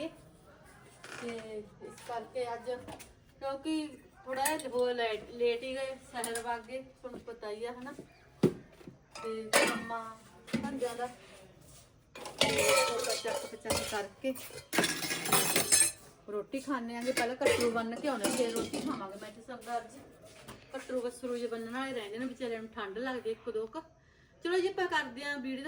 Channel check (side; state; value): both; identical; correlation 1.00